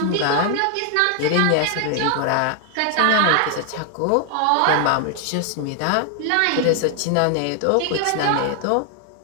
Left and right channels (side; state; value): both; different; correlation 0.00